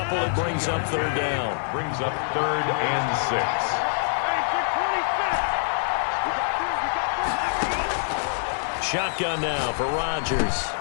It brings up 3rd down. Brings up 3rd and 6. Shotgun now for Rodgers.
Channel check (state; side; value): silent; right; digital silence